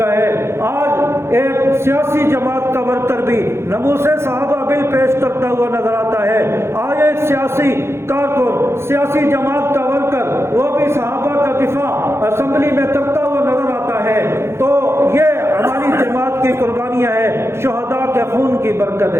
ہے، آج ایک سیاسی جماعت کا ورکر بھی ناموس صحابہ بل پیش کرتا ہوا نظر آتا ہے، آج ایک سیاسی کارکن، سیاسی جماعت کا ورکر وہ بھی صحابہ کا دفاع اسمبلی میں کرتا ہوا نظر آتا ہے۔ تو یہ ہماری جماعت کی قربانیاں ہیں، شہداء کے خون کی برکت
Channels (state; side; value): late; left; 0.12 ms